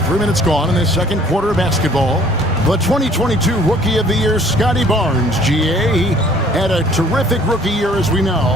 3 minutes gone in this second quarter of basketball. The 2022 Rookie of the Year, Scotty Barnes, GA. He had a terrific rookie year, as we know.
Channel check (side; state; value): both; normal; correlation 0.56